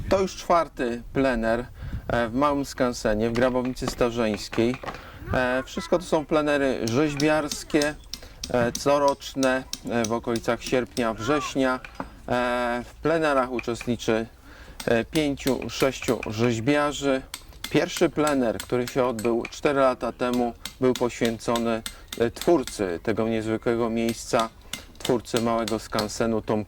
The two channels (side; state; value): both; identical; correlation 1.00